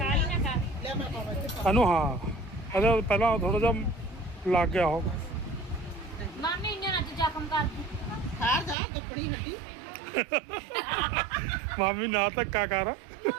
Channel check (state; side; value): drops out; left; at 8.8 s